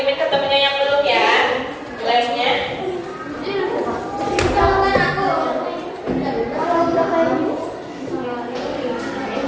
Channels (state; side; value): identical; both; correlation 1.00